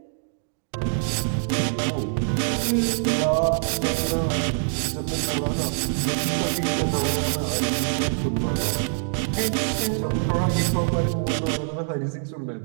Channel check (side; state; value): left; silent; digital silence